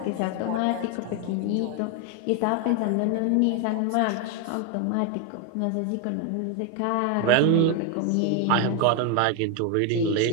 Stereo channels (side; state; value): both; different; correlation 0.01